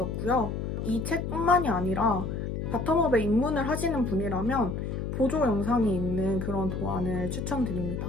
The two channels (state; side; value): noise; left; hum, 4 dB below the sound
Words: 이 책뿐만이 아니라 바텀업에 입문을 하시는 분이라면 보조 영상이 있는 그런 도안을 추천드립니다.